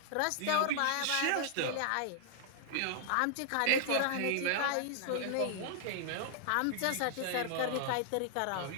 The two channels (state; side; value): different; both; correlation -0.01